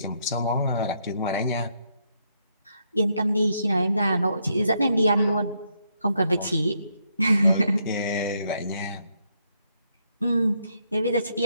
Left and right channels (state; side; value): inverted; both; correlation -0.76